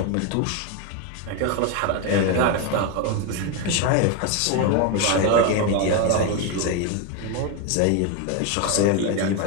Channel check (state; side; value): different; both; correlation 0.02